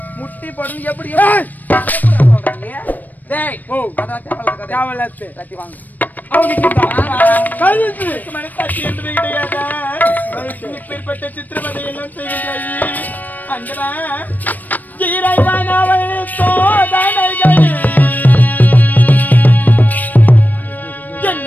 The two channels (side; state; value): right; late; 0.085 ms